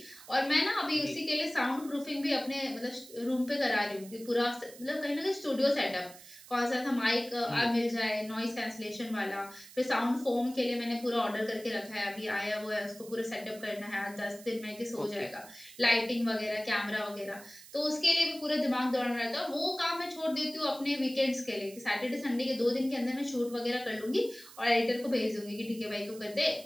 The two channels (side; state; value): right; noise; hiss, 19 dB below the sound